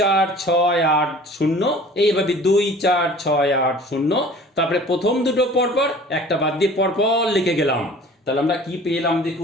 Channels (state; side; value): normal; both; correlation 0.46